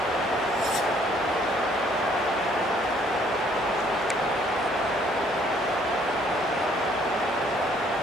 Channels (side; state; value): both; normal; correlation 0.63